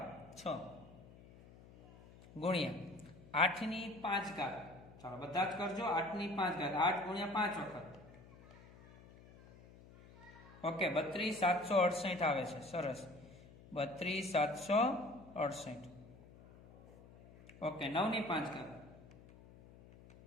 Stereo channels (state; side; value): noise; left; hum, 21 dB below the sound